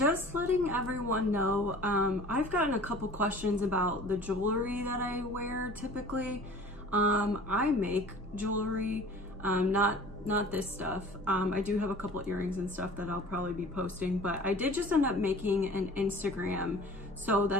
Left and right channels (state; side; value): normal; both; correlation 0.44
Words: letting everyone know, I've gotten a couple questions about the jewelry that I wear typically. I make jewelry, not this stuff. I do have a couple earrings and stuff that I'll probably be posting, but I did just end up making an Instagram so